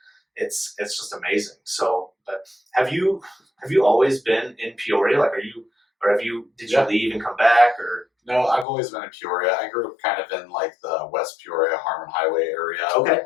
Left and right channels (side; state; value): right; drops out; at 8.7 s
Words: it's just amazing. So, but have you always been in Peoria? Like, did you leave and come back, or? No, I've always been in Peoria. I grew up kind of in like the West Peoria, Harmon Highway area. Okay.